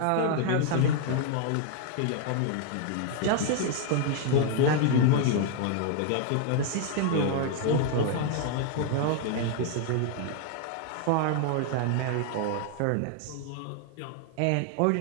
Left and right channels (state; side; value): different; both; correlation 0.00